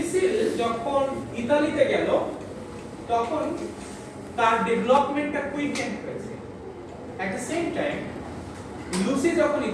যখন ইতালিতে গেল তখন তার ডেভেলপমেন্টটা কুইকেন হয়েছে at the same time Lucy যখন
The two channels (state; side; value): identical; both; correlation 1.00